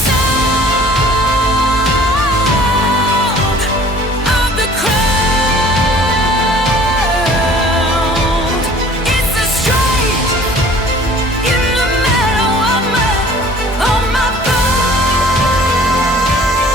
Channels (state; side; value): normal; both; correlation 0.50